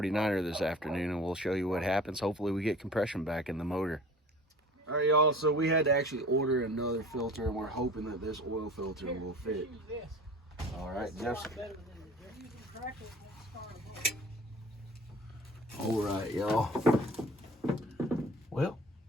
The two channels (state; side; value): normal; both; correlation 0.43